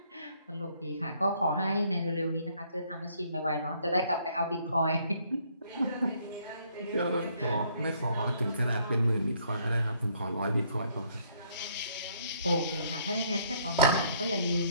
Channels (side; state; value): both; inverted; correlation -0.66